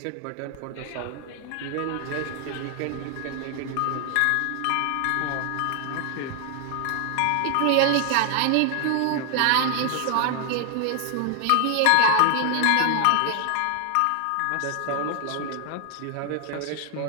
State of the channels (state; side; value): different; both; correlation 0.00